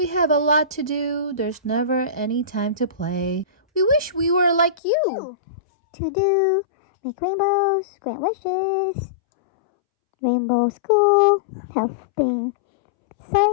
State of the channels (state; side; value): drops out; right; at 4.8 s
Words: have a lot to do. There's never any time to play. We wish we were like you. To do, make rainbows, grant wishes. Rainbow school, helping,